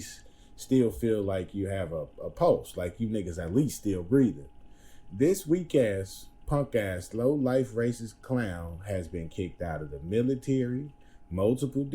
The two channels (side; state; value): both; identical; correlation 1.00